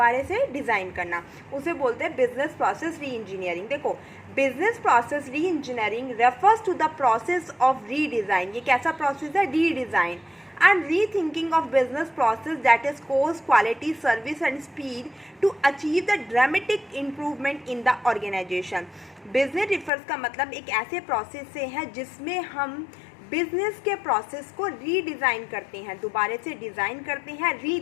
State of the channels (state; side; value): drops out; right; at 19.9 s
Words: से डिज़ाइन करना, उसे बोलते हैं बिजनेस प्रोसेस री इंजीनियरिंग। देखो, business process reengineering refers to the process of redesign. ये कैसा प्रोसेस है? Redesign and rethinking of business process that is cost, quality, service and speed to achieve the dramatic improvement in the organization. Business refers का मतलब एक ऐसे process से है जिसमें हम बिजनेस के प्रोसेस को रीडिज़ाइन करते हैं, दोबारा से डिज़ाइन करते हैं,